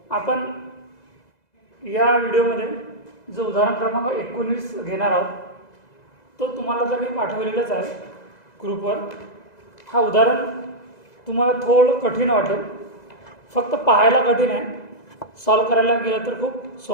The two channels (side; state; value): right; late; 2.0 ms